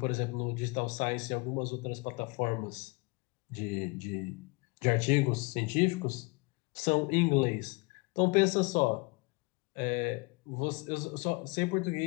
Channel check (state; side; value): quieter; right; 28.3 dB